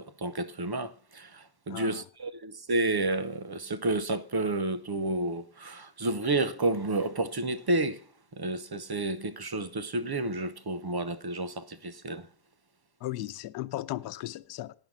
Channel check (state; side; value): late; left; 1.1 ms